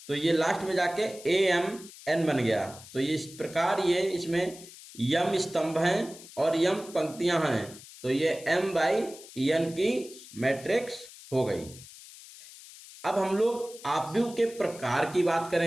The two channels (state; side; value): noise; left; hiss, 18 dB below the sound